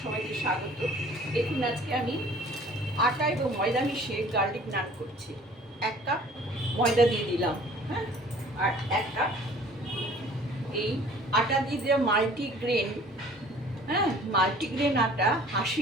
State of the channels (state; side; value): normal; both; correlation 0.51